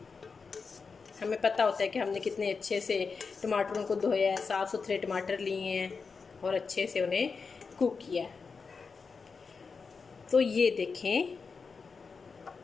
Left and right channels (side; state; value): right; quieter; 5.0 dB